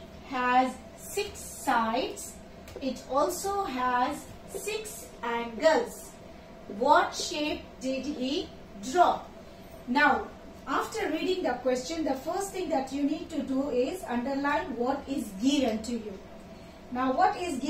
has 6 sides. It also has 6 angles. What shape did he draw? Now, after reading the question, the first thing that you need to do is underline what is given to you. Now, what is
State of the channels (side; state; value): both; identical; correlation 1.00